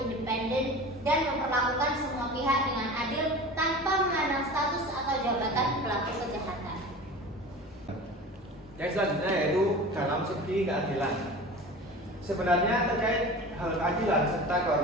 independen, dan memperlakukan semua pihak dengan adil tanpa memandang status atau jabatan pelaku kejahatan. Yang selanjutnya yaitu dalam segi keadilan. Sebenarnya terkait hal keadilan serta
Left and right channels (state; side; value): normal; both; correlation 0.35